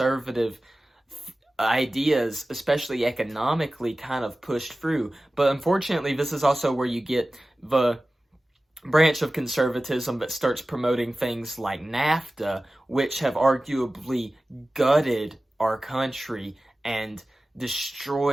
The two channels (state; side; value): normal; both; correlation 0.96